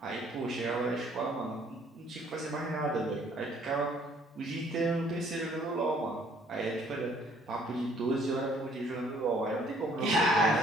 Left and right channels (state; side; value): normal; both; correlation 0.61